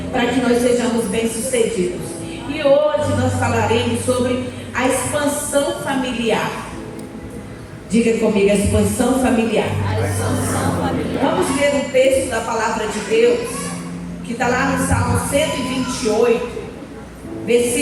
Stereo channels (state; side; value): identical; both; correlation 1.00